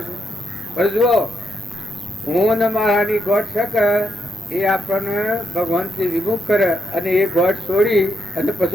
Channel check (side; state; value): both; normal; correlation 0.81